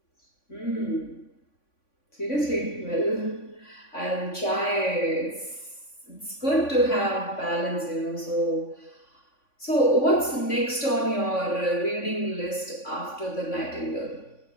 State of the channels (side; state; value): right; late; 3.5 ms